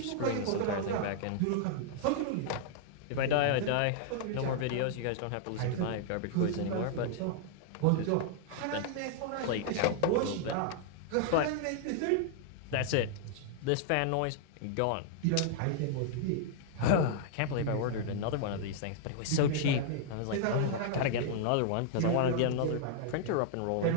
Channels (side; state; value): both; different; correlation -0.01